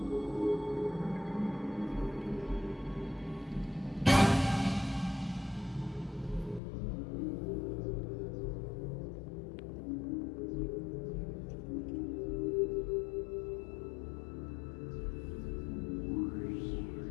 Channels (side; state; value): right; drops out; at 6.6 s